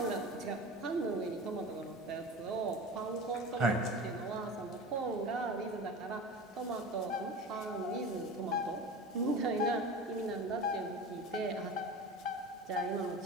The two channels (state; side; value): normal; both; correlation 0.32